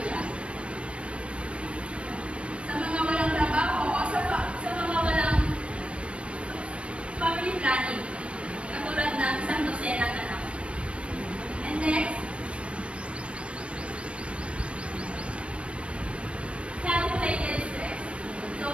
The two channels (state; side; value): late; left; 0.060 ms